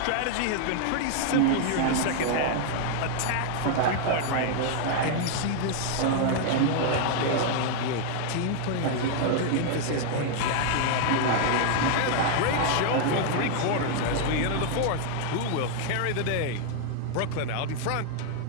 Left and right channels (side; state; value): both; different; correlation 0.00